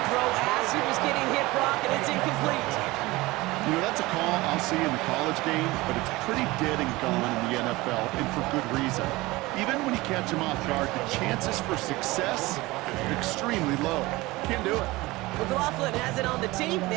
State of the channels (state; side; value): quieter; left; 20.6 dB